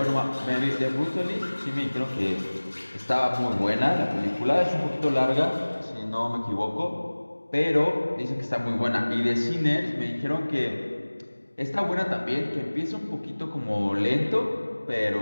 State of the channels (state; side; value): inverted; both; correlation -1.00